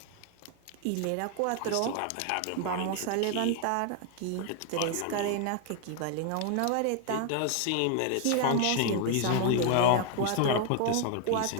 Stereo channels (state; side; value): different; both; correlation 0.00